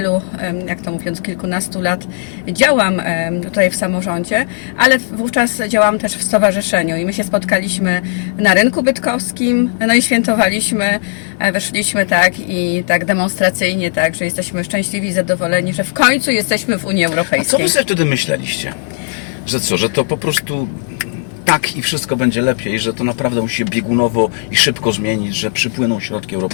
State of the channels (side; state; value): right; silent; 57 dB below the other